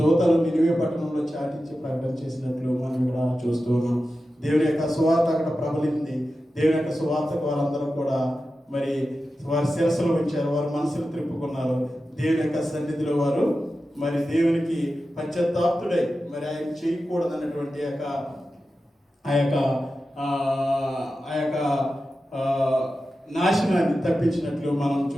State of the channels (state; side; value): normal; both; correlation 0.92